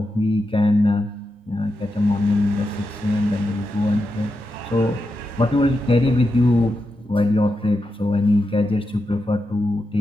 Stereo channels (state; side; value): normal; both; correlation 0.87